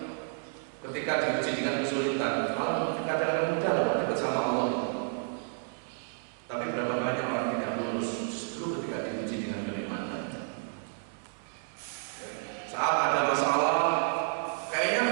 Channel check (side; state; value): left; silent; digital silence